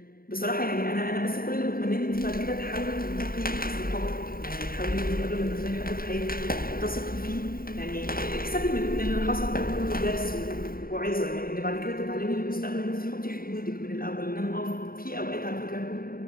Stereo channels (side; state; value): right; late; 0.43 ms